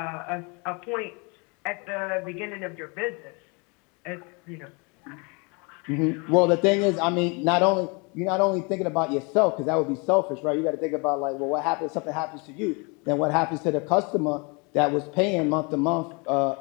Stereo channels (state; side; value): quieter; right; 31.1 dB